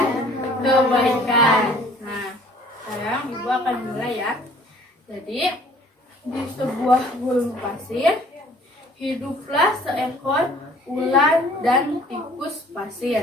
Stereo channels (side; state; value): both; normal; correlation 0.54